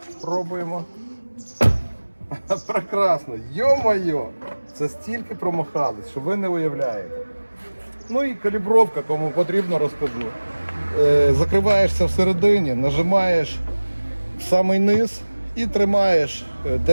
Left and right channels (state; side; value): inverted; both; correlation -1.00